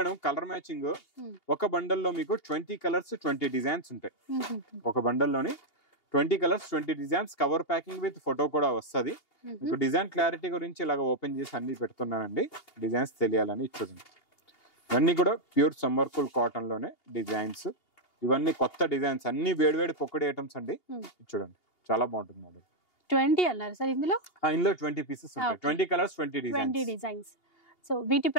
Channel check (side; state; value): right; late; 2.8 ms